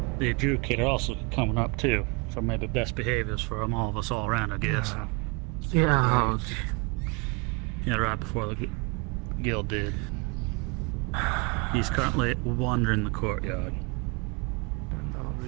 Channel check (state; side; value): quieter; left; 30.4 dB